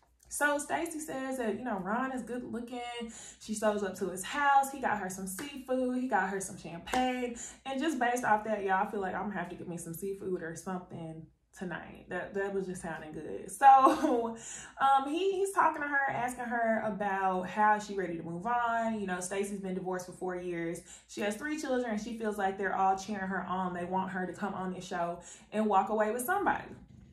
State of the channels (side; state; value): both; identical; correlation 1.00